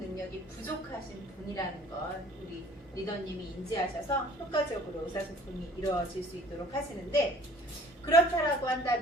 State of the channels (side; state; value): both; normal; correlation 0.52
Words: 부족하신 분이라는 건 우리 리더님이 인지하셔서 효과적으로 의사소통이 이루어질 수 있도록 하시는데, 그렇다라고